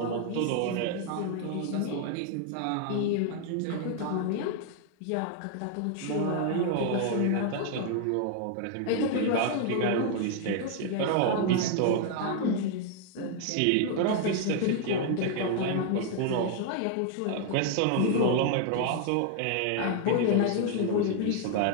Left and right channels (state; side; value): different; both; correlation 0.00